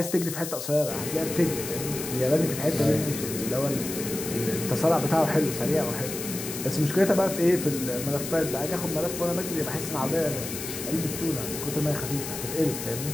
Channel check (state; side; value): noise; left; hiss, 7 dB below the sound